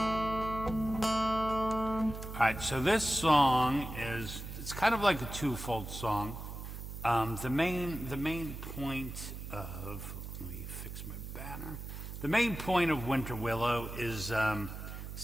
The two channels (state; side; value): noise; right; hum, 9 dB below the sound